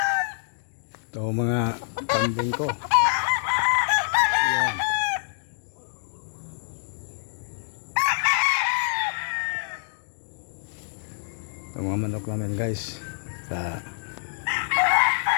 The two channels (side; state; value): right; silent; digital silence